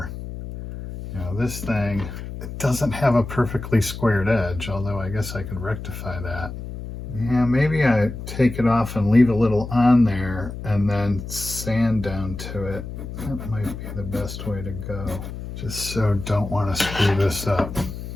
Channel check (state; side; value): noise; left; hum, 9 dB below the sound